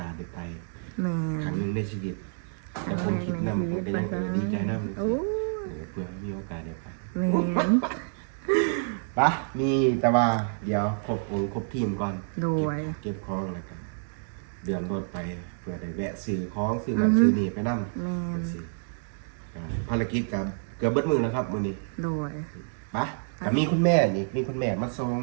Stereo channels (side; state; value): left; silent; digital silence